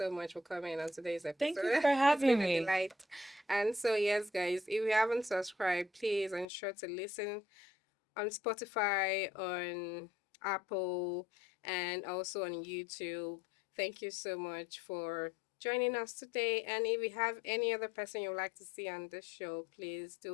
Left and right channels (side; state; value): right; drops out; at 6.5 s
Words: much for coming on today's Thank you episode. for It's having been a me. delight. And so, yes, guys, if you haven't subscribed, please ensure to listen on Spotify, on Apple, and also on YouTube. Thank you so much for joining us today. And if you have any other person you'd like to see on this show, please